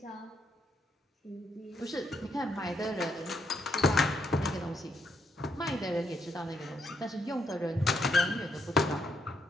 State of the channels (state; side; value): normal; both; correlation 0.75